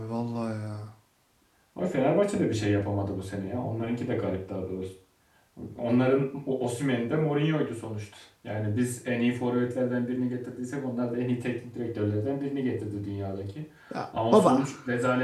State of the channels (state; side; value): identical; both; correlation 1.00